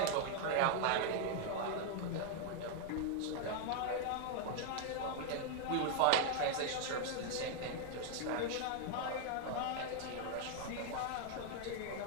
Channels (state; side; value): different; both; correlation 0.00